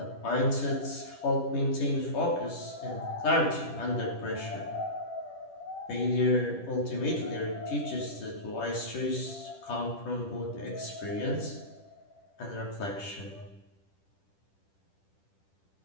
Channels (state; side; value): late; right; 10 ms